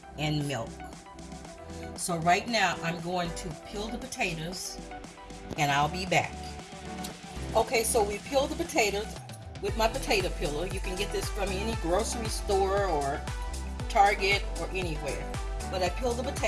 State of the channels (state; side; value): identical; both; correlation 1.00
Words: and milk. So right now I'm going to peel the potatoes and I'll be back. Okay, so we peeled the potatoes with my potato peeler. You can get this from any grocery store or Target or anywhere. But I peeled the